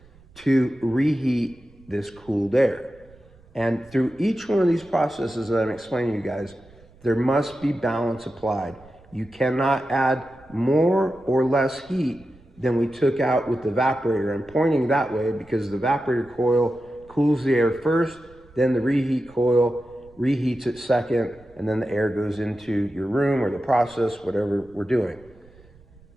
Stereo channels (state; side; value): noise; right; rumble, 26 dB below the sound